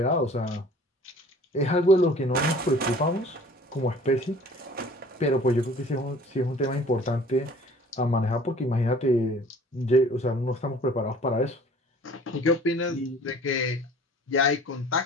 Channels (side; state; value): both; normal; correlation 0.50